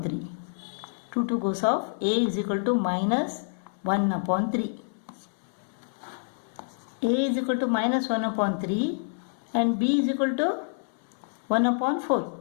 3. 2 goes off. A is equal to minus 1 upon 3. A is equal to minus 1 upon 3 and b is equal to 1 upon 4.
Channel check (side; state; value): right; silent; 60 dB below the other